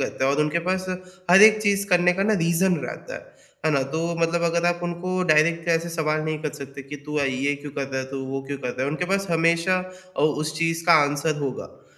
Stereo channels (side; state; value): both; identical; correlation 1.00